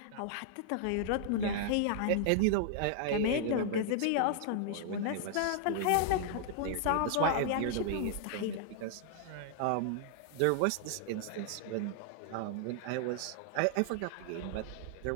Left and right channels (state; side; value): different; both; correlation 0.00